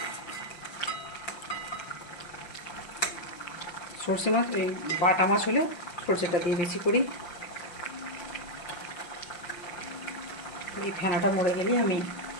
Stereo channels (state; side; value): late; right; 5.8 ms